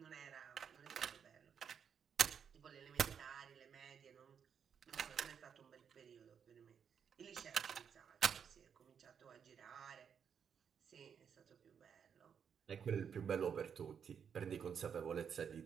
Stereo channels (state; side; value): quieter; left; 7.4 dB